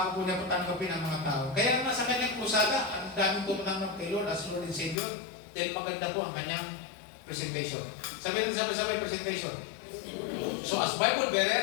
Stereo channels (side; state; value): right; drops out; at 5.0 s